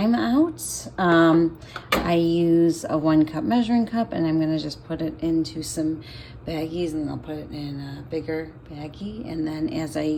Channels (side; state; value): both; identical; correlation 1.00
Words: out. I use a 1 cup measuring cup, and I'm gonna just put it into some baggies, and I'll put it in a bigger baggie, and then as I